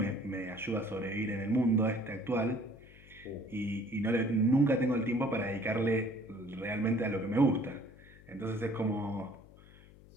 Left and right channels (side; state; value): left; noise; hum, 22 dB below the sound